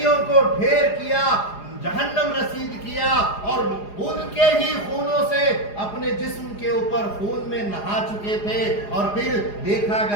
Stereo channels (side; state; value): right; late; 4.9 ms